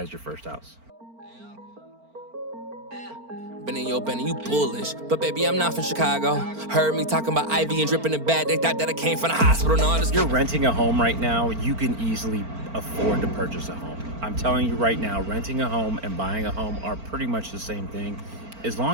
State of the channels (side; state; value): left; late; 4.4 ms